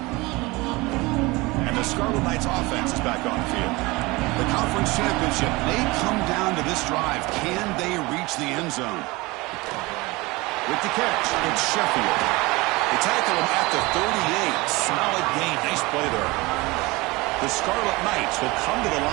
And the Scarlet Knights offense is back on the field. The conference championship may come down to this drive. Can they reach the end zone? With the catch, it's Sheffield. They tackle him at the 38. Solid gain. Nice play there. The Scarlet Knights will come to the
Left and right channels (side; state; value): left; quieter; 22.8 dB